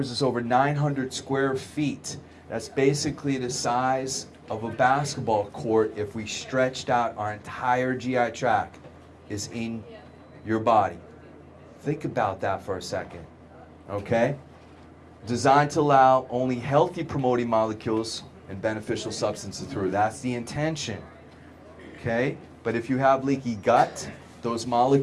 is over 900 square feet. That's basically the size of a basketball court if we stretched out our entire GI tract is in your body. Think about that for a second, okay? Designed to allow only healthy promoting molecules and beneficial substances through. That's the intention, okay? But if you have leaky gut, those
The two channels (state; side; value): identical; both; correlation 1.00